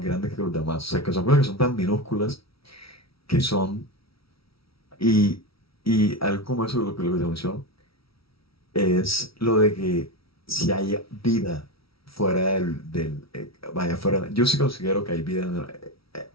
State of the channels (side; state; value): right; late; 0.75 ms